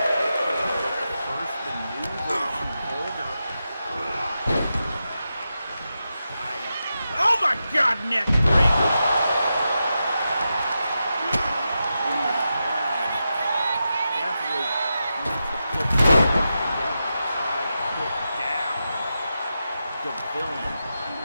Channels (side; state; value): both; inverted; correlation -0.89